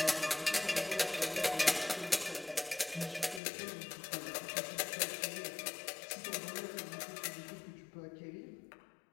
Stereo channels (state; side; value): drops out; right; at 3.4 s